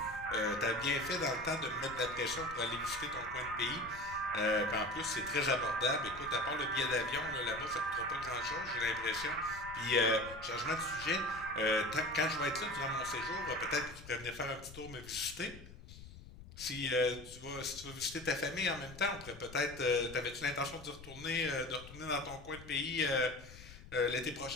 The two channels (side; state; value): left; noise; rumble, 16 dB below the sound